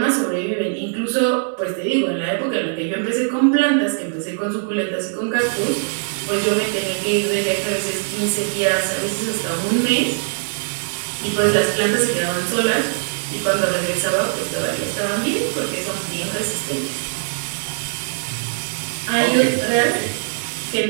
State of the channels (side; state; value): left; silent; 65 dB below the other